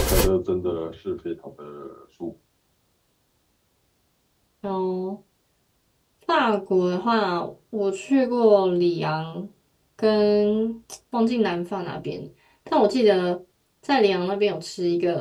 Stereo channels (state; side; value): identical; both; correlation 1.00